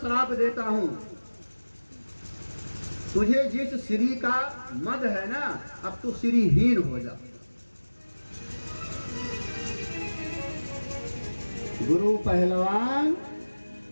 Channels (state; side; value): inverted; both; correlation -1.00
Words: देता हूं, तुझे जिस श्री का मद है ना, अब तू श्रीहीन हो जा। गुरु पहलवान